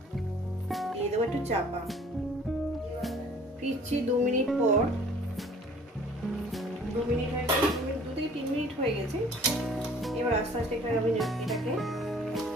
দিয়ে দেবো একটু চাপা। ফিরছি 2 মিনিট পর। 2 মিনিট হয়ে গেছে, 2 থেকে 3 মিনিট হয়ে গেছে। এবার আস্তে আস্তে আমি এটাকে,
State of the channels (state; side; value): normal; both; correlation 0.53